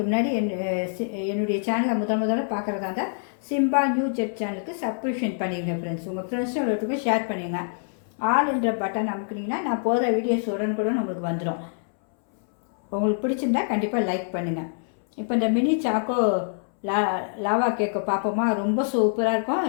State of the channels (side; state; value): right; silent; 62 dB below the other